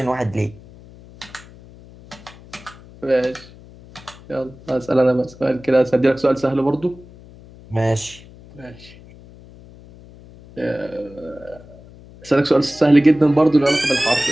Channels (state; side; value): noise; left; hum, 21 dB below the sound